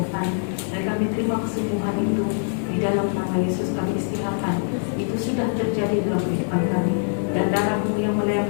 dan kami terima kesembuhan itu di dalam nama Yesus. Kami istiharkan itu sudah terjadi dalam kehidupan kami, dan darah-Mu yang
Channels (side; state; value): right; silent; 63 dB below the other